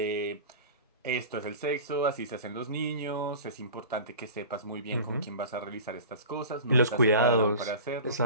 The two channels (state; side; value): inverted; both; correlation -0.35